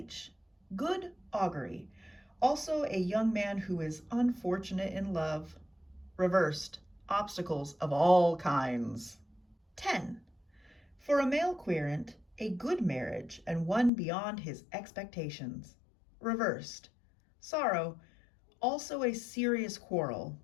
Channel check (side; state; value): right; drops out; at 13.9 s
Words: good augury, also a young man who is unfortunate in love. Reversed, obstacles of all kinds. 10. For a male querent, a good marriage and one beyond his expectations. Reversed, sorrow, also a serious quarrel.